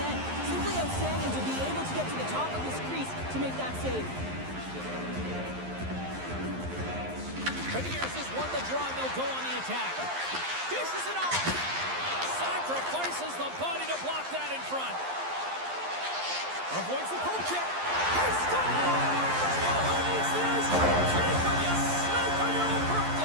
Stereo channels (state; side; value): late; left; 11 ms